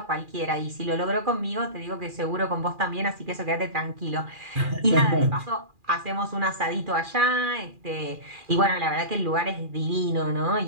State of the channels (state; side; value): late; left; 2.4 ms